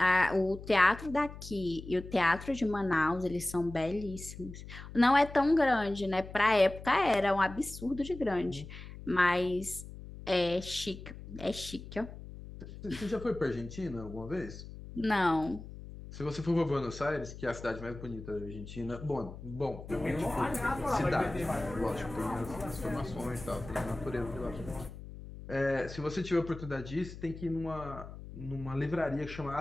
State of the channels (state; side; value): noise; left; hum, 13 dB below the sound